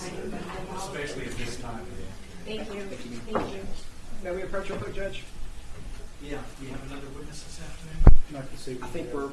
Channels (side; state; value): both; identical; correlation 1.00